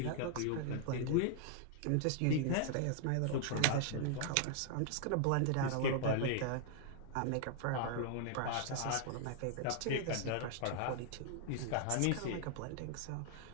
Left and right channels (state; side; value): different; both; correlation -0.01